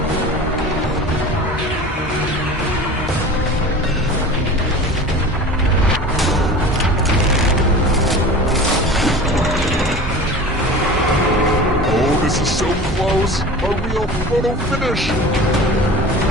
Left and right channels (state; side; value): normal; both; correlation 0.36